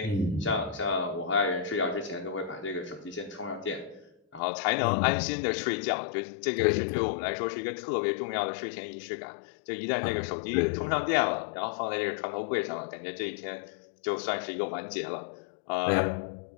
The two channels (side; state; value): right; drops out; at 4.4 s